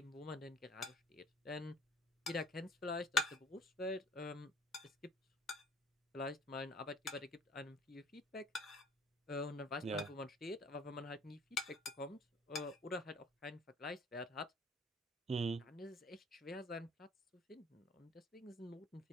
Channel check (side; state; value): both; normal; correlation 0.54